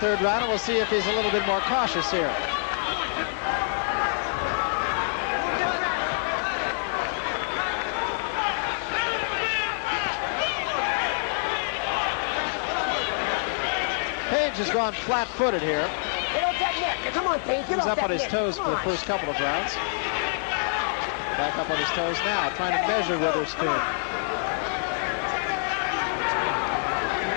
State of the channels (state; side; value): silent; right; digital silence